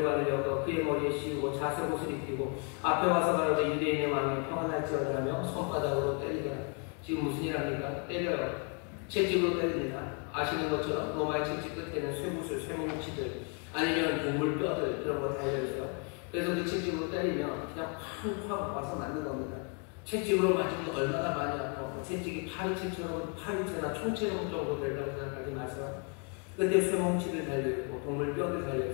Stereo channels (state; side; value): quieter; right; 38.1 dB